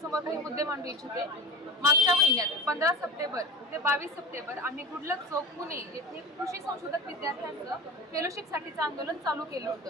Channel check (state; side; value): normal; both; correlation 0.31